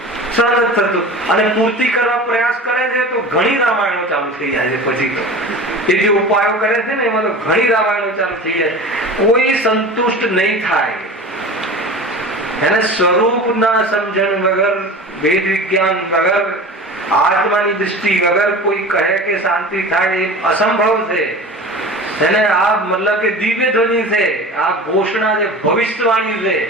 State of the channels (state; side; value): normal; both; correlation 0.34